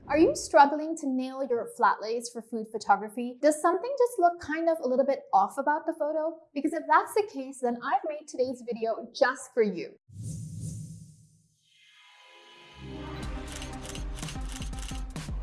Are you struggling to nail your flat lays for food photography? Does something just look kind of a little bit off about the photo? Because if that's the case, then I've made today's video just for you.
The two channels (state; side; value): identical; both; correlation 1.00